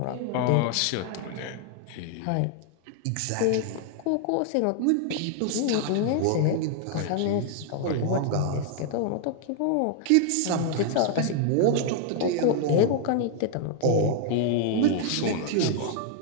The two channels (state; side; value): different; both; correlation 0.00